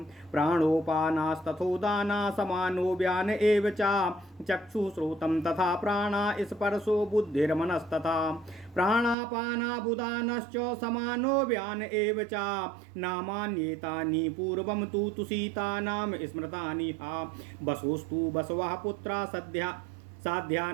प्राणोपानास्तथोदाना समानो व्यान एव च चक्षुश्रोतं तथा प्राणा स्पर्शो बुद्धिर्मनस्तथा प्राणापानाबुदानश्च समानो व्यान एव च नामान्येतानि पूर्वं तु तुषिता नाम स्मृतानि हा वसोस्तु बसवः पुत्रा साध्या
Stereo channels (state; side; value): drops out; left; at 9.2 s